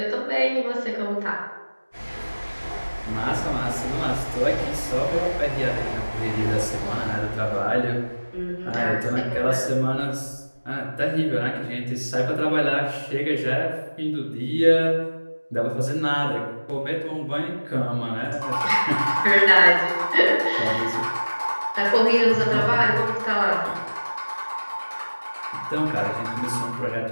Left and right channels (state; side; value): inverted; both; correlation -1.00